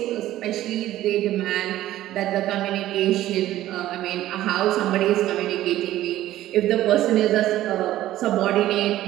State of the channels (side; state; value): left; quieter; 14.2 dB